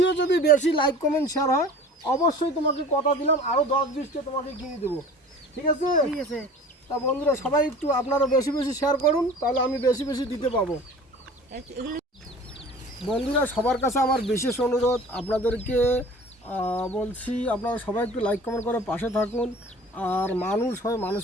যদি বেশি লাইক কমেন্ট শেয়ার হয়, অবশ্যই তোমাকে কথা দিলাম আরো 10-20টা তোমাকে কিনে দেবো, ঠিক আছে? ঠিক আছে। তা বন্ধুরা সবাই একটু আপনারা বেশি বেশি শেয়ার করুন, তাহলে আমি বেশি বেশি দিতে পাবো। এগুলো বন্ধুরা সবার কাছে আমার বিশেষ অনুরোধ, আপনাদেরকে বলছি, আপনারা সবাই একটু লাইক কমেন্ট করে পাশে থাকুন। আর মানুষ হয়,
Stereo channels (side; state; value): both; normal; correlation 0.43